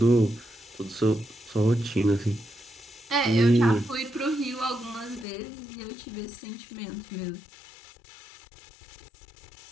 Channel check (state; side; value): drops out; right; at 5.2 s